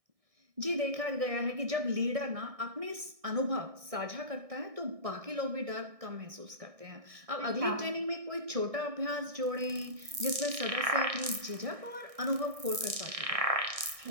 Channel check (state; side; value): late; left; 1.6 ms